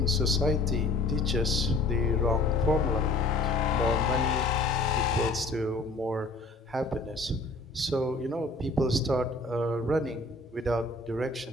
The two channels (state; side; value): quieter; right; 3.2 dB